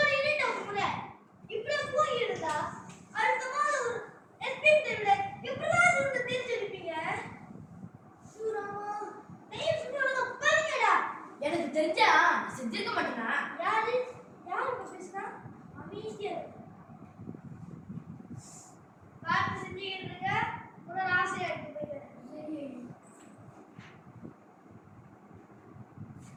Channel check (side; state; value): both; identical; correlation 1.00